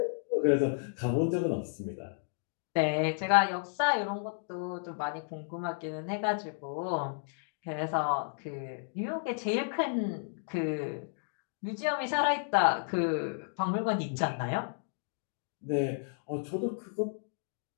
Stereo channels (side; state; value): right; silent; digital silence